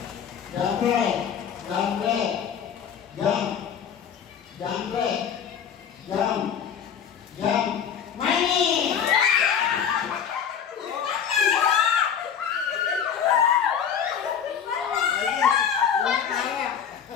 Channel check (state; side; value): quieter; right; 7.9 dB